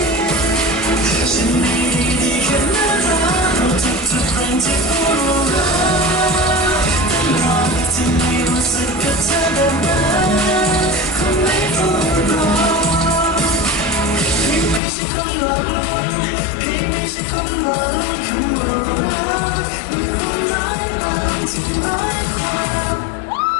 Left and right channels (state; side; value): drops out; right; at 14.8 s